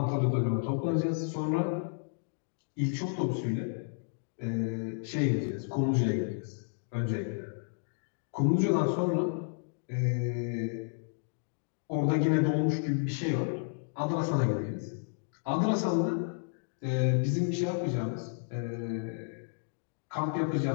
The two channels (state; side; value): silent; right; digital silence